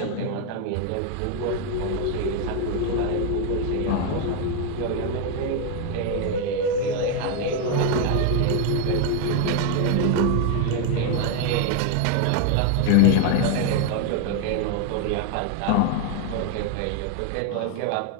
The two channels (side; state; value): both; different; correlation 0.01